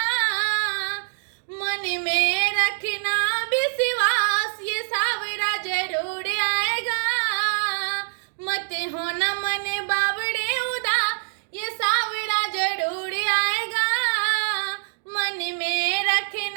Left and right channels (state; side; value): silent; left; digital silence